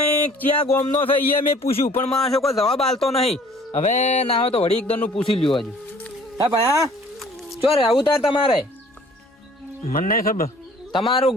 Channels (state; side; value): normal; both; correlation 0.53